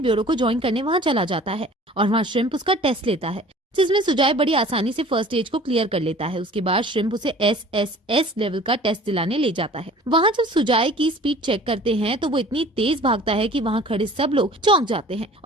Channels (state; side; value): normal; both; correlation 0.47